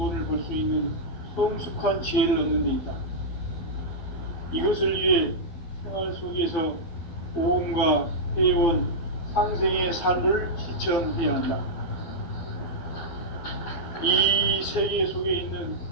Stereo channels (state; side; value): late; right; 12 ms